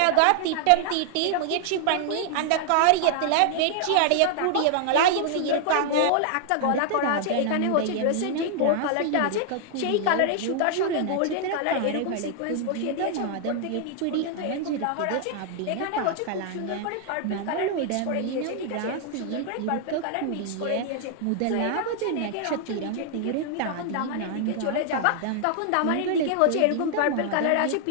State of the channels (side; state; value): both; different; correlation 0.00